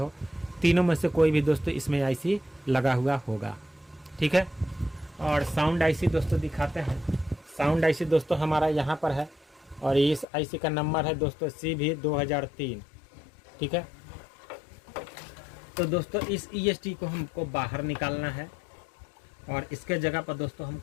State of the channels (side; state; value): right; drops out; at 10.2 s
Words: तीनों में से कोई भी दोस्तों इसमें IC लगा हुआ होगा, ठीक है। और साउंड IC दोस्तों दिखाते हैं। साउंड IC दोस्तों हमारा यहाँ पर है और इस IC का नंबर है दोस्तों CV2003, ठीक है। तो दोस्तों इस EST को हमको बाहर निकालना है और इसके जगह पर दोस्तों